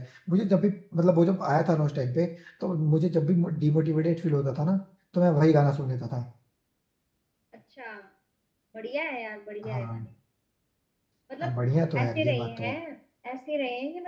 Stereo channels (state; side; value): identical; both; correlation 1.00